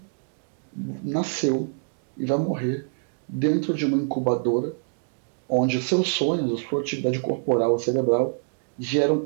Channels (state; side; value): silent; left; digital silence